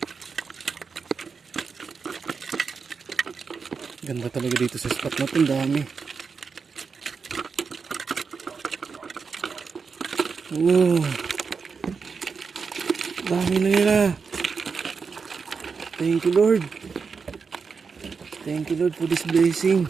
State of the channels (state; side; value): quieter; left; 5.3 dB